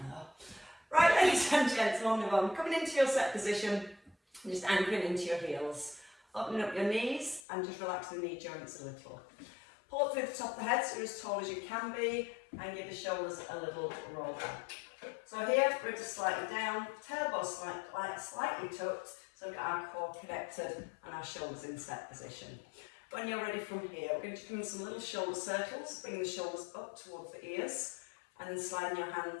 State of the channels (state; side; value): drops out; right; at 7.5 s